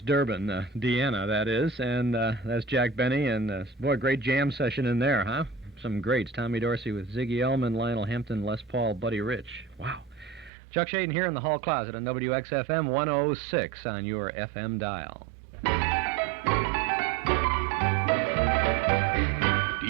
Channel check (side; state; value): left; drops out; at 10.5 s